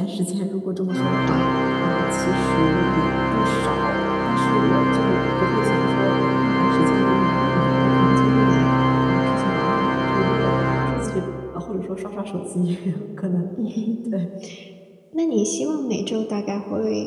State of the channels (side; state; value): both; identical; correlation 1.00